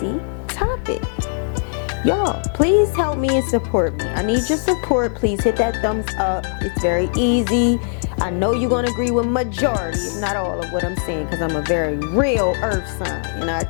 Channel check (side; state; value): right; silent; digital silence